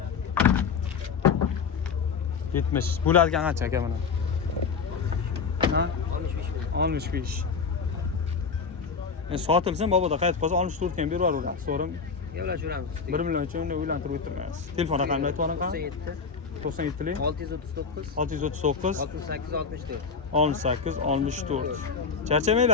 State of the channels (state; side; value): quieter; right; 5.5 dB